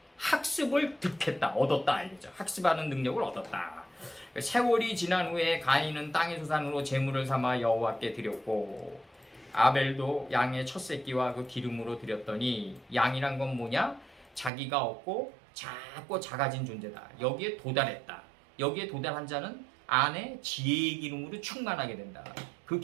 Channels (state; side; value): drops out; left; at 14.5 s